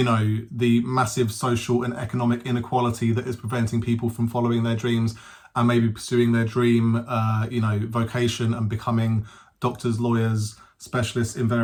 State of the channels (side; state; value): both; identical; correlation 1.00